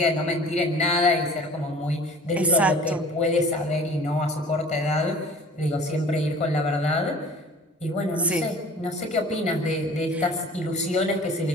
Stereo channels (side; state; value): both; normal; correlation 0.45